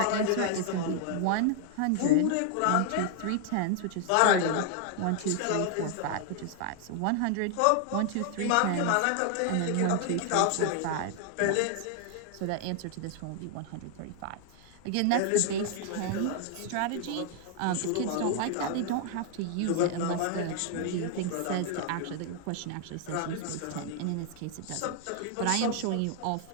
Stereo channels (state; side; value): different; both; correlation 0.00